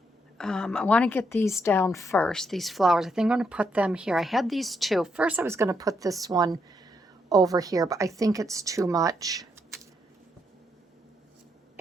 I want to get these down first, these flowers. I think I'm going to put them here. I had these two. First I was going to put this one over here, but I think it's too much.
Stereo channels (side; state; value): both; normal; correlation 0.77